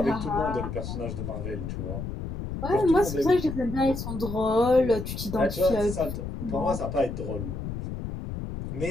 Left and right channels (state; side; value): noise; left; rumble, 6 dB below the sound